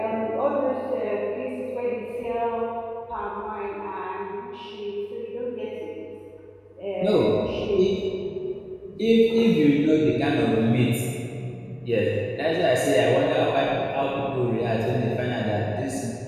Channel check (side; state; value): both; identical; correlation 1.00